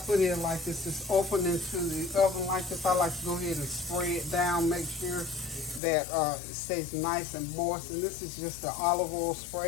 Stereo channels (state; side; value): drops out; right; at 5.8 s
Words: in like this is open into the oven like this. I like to go ahead and spray it down, make sure that it stays nice and moist. And this is just the olive oil